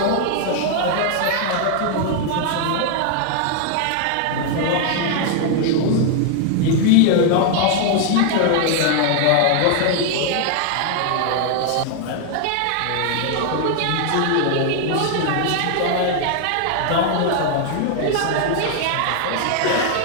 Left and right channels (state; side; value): different; both; correlation 0.00